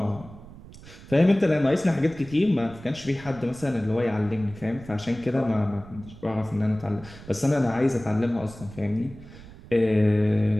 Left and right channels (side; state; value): right; noise; rumble, 18 dB below the sound